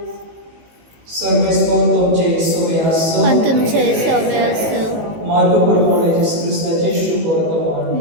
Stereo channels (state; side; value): late; left; 18 ms